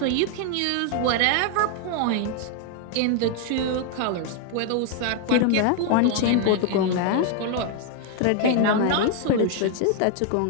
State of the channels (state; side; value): different; both; correlation 0.00